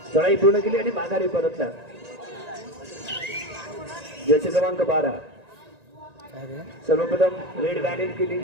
चढाई पूर्ण केली आणि माघारी परतला. जर्सी क्रमांक 12 सर्वप्रथम रेड बॅलेन केली,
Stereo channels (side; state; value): left; late; 1.9 ms